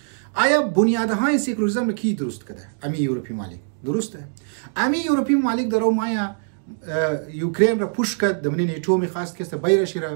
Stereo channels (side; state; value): left; silent; digital silence